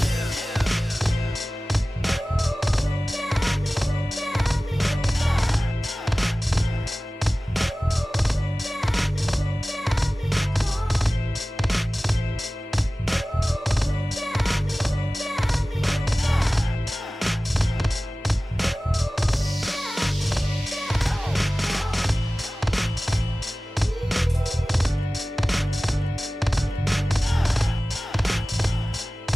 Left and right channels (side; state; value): both; normal; correlation 0.97